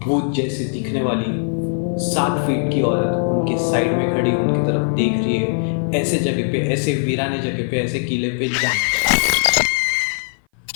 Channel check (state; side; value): silent; right; 57 dB below the other